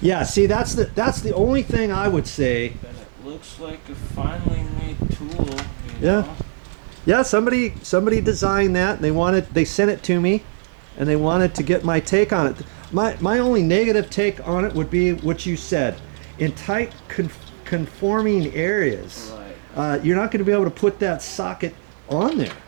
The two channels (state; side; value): silent; left; digital silence